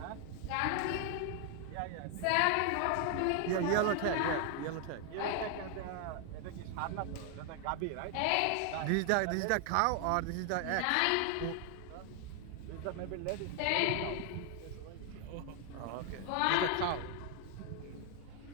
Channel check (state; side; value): different; both; correlation 0.00